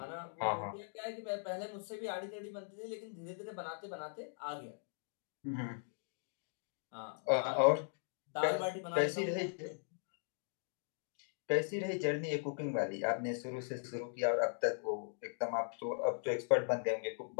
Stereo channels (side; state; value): right; silent; digital silence